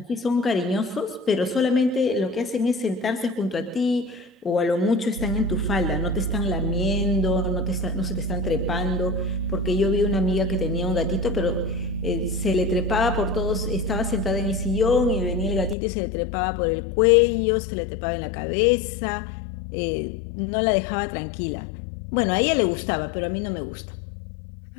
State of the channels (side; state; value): right; drops out; at 15.8 s